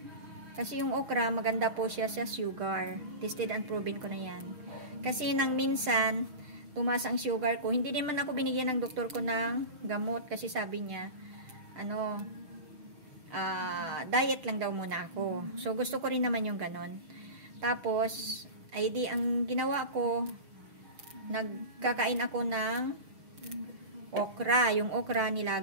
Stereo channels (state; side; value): late; left; 6.2 ms